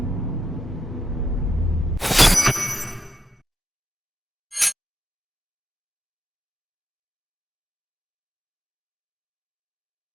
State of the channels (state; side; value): normal; both; correlation 0.85